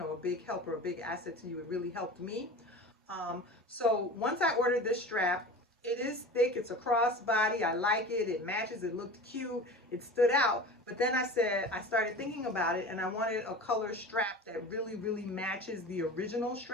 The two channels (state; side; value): normal; both; correlation 0.35